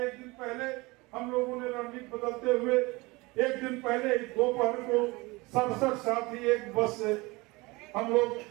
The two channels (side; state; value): left; quieter; 23.6 dB